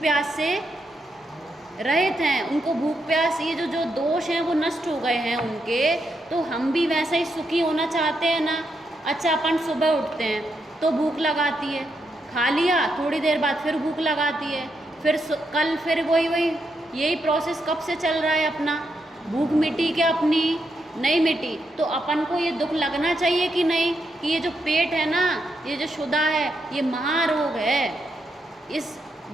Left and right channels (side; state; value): both; normal; correlation 0.82